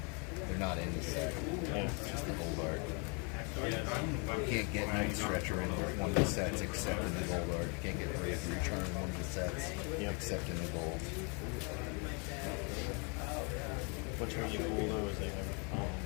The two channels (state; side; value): quieter; right; 34.5 dB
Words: They're not in the set. It's just the gold art. You can't get night stretcher in one of the sets except in the gold art. You can't get brave return in one of the sets except in the gold. What's really cool though is they have